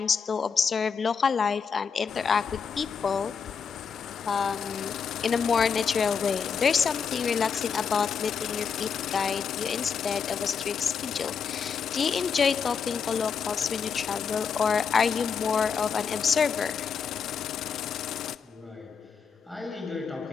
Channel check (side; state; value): right; quieter; 6.2 dB